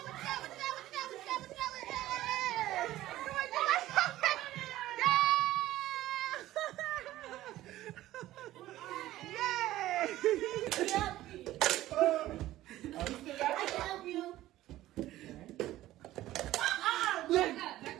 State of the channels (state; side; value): quieter; left; 15.1 dB